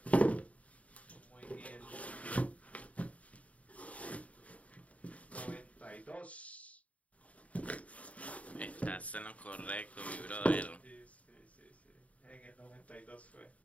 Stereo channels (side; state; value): right; late; 0.067 ms